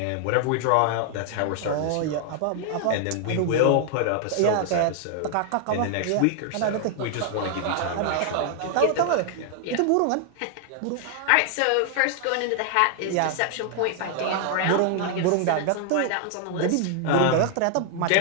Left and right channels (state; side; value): different; both; correlation 0.00